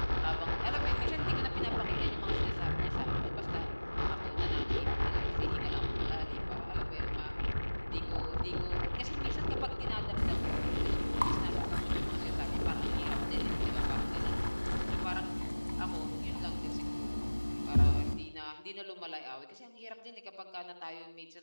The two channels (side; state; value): both; inverted; correlation -1.00